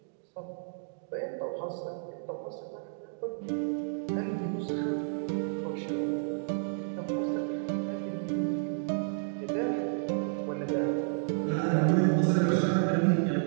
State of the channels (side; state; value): left; silent; digital silence